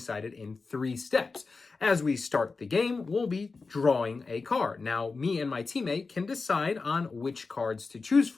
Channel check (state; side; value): quieter; right; 4.2 dB